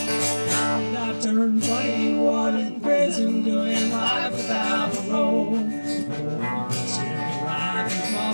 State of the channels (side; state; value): both; inverted; correlation -1.00